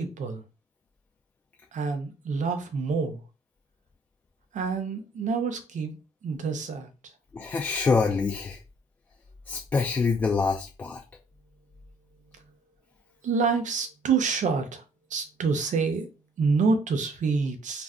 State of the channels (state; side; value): normal; both; correlation 0.62